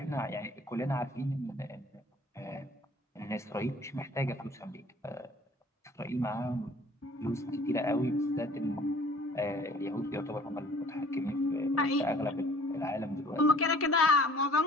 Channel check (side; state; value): both; normal; correlation 0.52